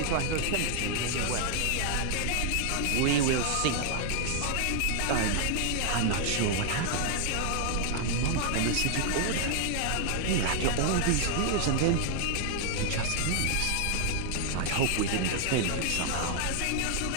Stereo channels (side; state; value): both; different; correlation 0.00